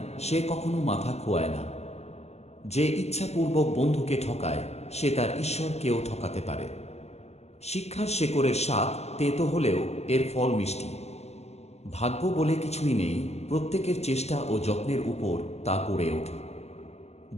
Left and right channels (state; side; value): late; right; 0.31 ms